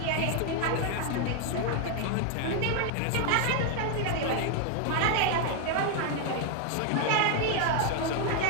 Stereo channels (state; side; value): different; both; correlation 0.01